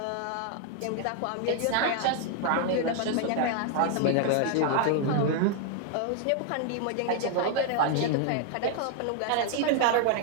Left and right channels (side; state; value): both; different; correlation 0.00